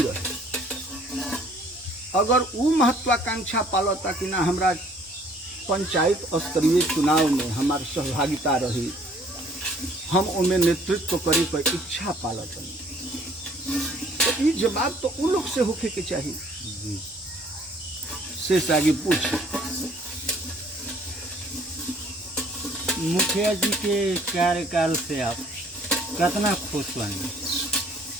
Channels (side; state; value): both; normal; correlation 0.58